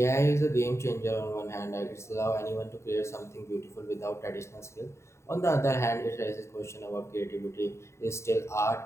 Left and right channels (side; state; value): right; late; 0.13 ms